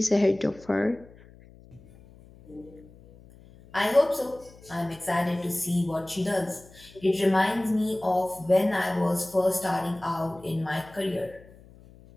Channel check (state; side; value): noise; left; hum, 23 dB below the sound